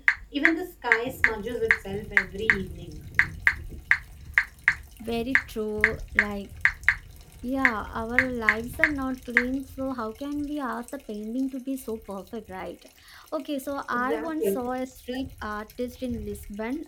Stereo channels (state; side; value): identical; both; correlation 1.00